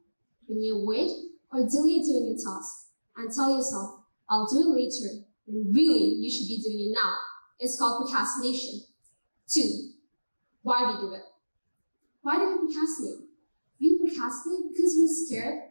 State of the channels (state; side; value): inverted; both; correlation -1.00